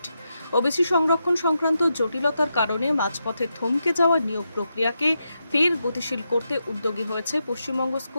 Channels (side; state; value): both; inverted; correlation -0.85